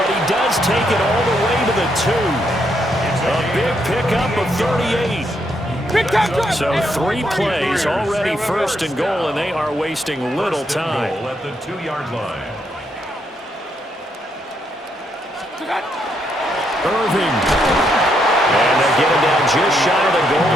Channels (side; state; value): both; normal; correlation 0.76